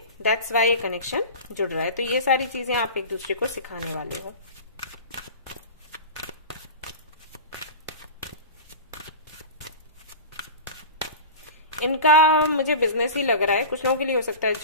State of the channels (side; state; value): both; inverted; correlation -0.33